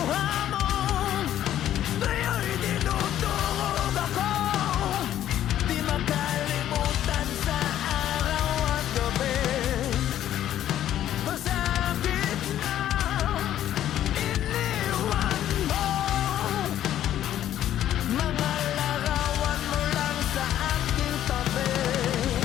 mo, ngayon'y tinutulog ako. Di makalimutan sa araw at gabi. Sa gitna, iniwan mo mga larawan mo lang sa aking tabi.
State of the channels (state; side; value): quieter; right; 11.7 dB